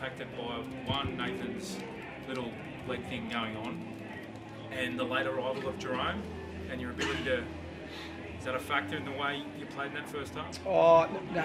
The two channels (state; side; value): identical; both; correlation 1.00